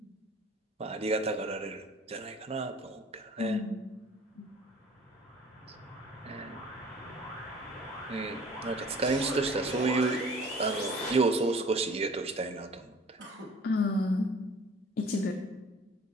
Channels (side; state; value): both; normal; correlation 0.48